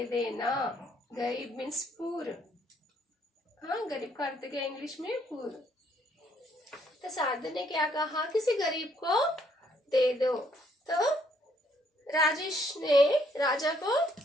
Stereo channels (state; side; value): normal; both; correlation 0.68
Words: देना, गरीब मीन्स पूर, हाँ गरीब का अर्थ क्या इंग्लिश में, पूर। तो साधु ने क्या कहा, किसी गरीब को दे दो। तो राजेश ने राजा को